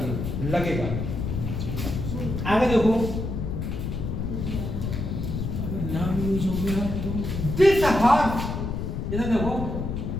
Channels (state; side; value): noise; left; rumble, 3 dB below the sound